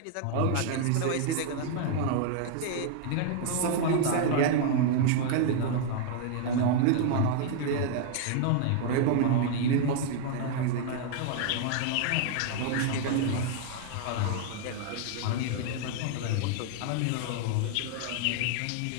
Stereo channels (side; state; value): both; different; correlation 0.00